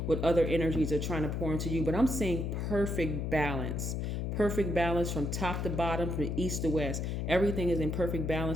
what other energies are trying to pour into you. But I'm seeing perfect balance from top to bottom, from east to west. Everything is in perfect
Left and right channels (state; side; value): noise; left; hum, 1 dB below the sound